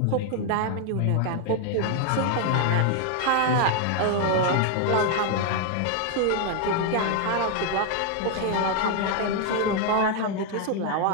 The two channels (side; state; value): both; different; correlation 0.01